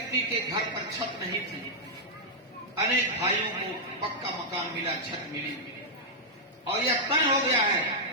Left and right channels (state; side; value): normal; both; correlation -0.07